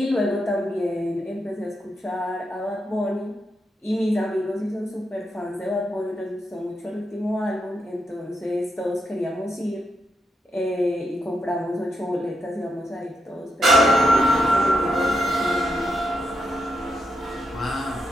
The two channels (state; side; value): normal; both; correlation 0.83